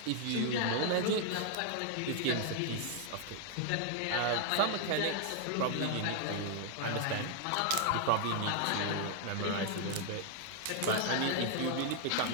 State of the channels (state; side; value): different; both; correlation 0.00